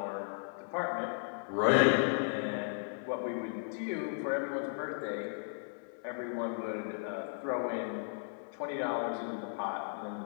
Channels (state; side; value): silent; right; 54 dB below the other